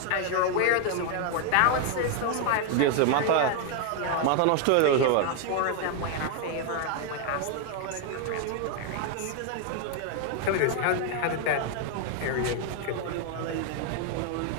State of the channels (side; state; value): both; different; correlation 0.00